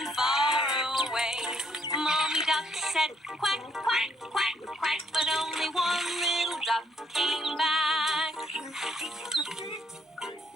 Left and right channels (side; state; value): both; normal; correlation 0.70